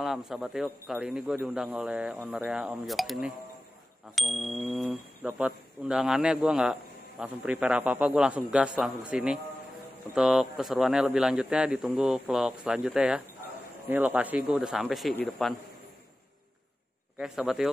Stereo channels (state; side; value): normal; both; correlation 0.95